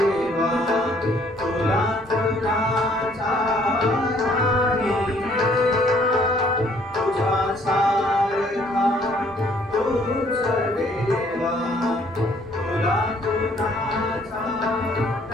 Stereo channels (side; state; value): both; normal; correlation 0.62